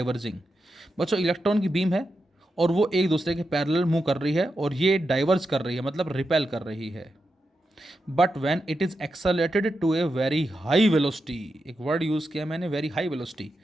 बच्चों इलेक्ट्रॉन की बीम है और वो एक दूसरे के पैरेलल मूव कर रही है, और ये डाइवर्ज कर रही है मतलब रिपेल कर रही है। But when it is accelerated to a very high velocity, एक वर्ड यूज किया मैंने, very high velocity,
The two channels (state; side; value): normal; both; correlation 0.87